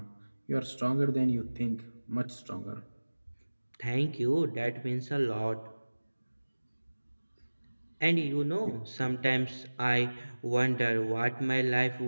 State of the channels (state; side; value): inverted; both; correlation -1.00